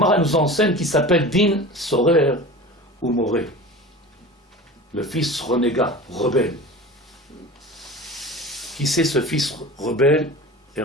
nous enseigne qui s'appelle din sorer ou moré. Le fils renégat, rebelle. Qui c'est ce fils rebelle et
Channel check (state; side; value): normal; both; correlation 0.35